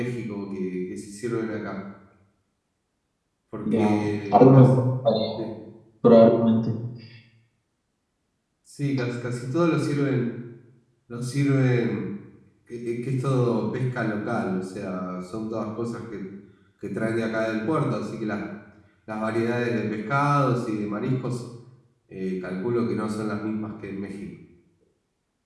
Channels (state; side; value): identical; both; correlation 1.00